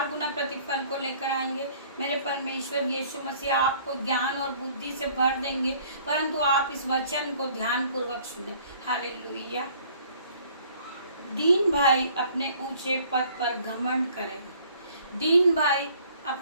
गुना प्रतिफल को लेकर आएंगे। मेरे परमेश्वर यीशु मसीह आपको ज्ञान और बुद्धि से भर देंगे, परंतु आप इस वचन को ध्यान पूर्वक सुने। हालेलुया। दीन भाई अपने ऊंचे पद पर घमंड करें, दीन भाई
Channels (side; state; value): both; inverted; correlation -0.57